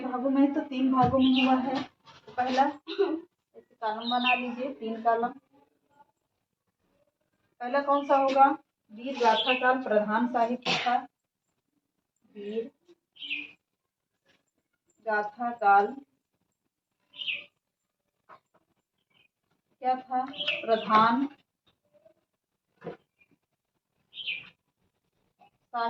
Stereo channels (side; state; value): both; identical; correlation 1.00